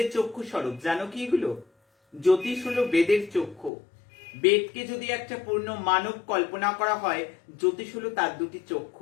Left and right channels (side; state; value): right; drops out; at 3.7 s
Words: চক্ষু স্বরূপ, জানো কি এগুলো? জ্যোতিষ হলো বেদের চক্ষু। বেদকে যদি একটা পূর্ণ মানব কল্পনা করা হয়, জ্যোতিষ হলো তার দুটি